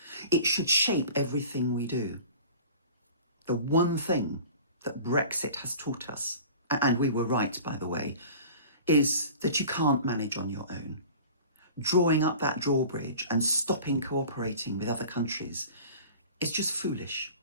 It should shape everything we do. The one thing that Brexit has taught us, and we were right, by the way, is that you can't manage on your own. Drawing up that drawbridge and stopping cooperating with other countries is just foolish.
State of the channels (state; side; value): inverted; both; correlation -0.41